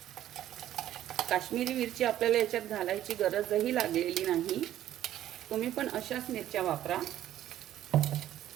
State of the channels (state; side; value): quieter; left; 12.4 dB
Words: काश्मीरी मिरची आपल्याला याच्यात घालायची गरजही लागलेली नाही, तुम्ही पण अशाच मिरच्या वापरा।